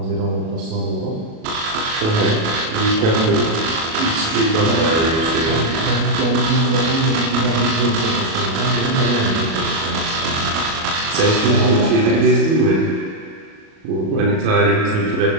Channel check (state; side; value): late; left; 37 ms